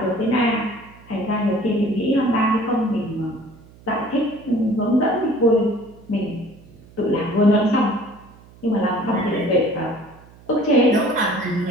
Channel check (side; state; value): right; noise; hum, 24 dB below the sound